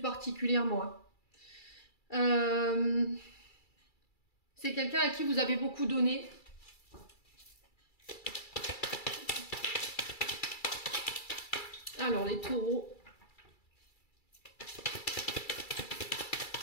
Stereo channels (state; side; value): late; right; 2.3 ms